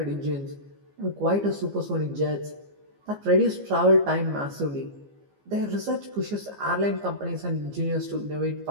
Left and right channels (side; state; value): left; late; 15 ms